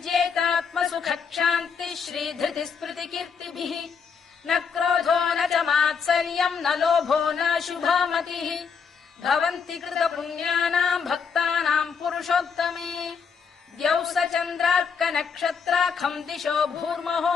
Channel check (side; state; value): right; quieter; 6.1 dB